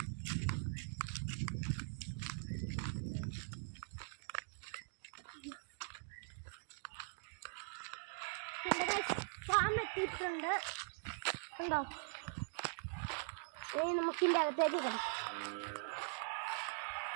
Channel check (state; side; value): silent; left; digital silence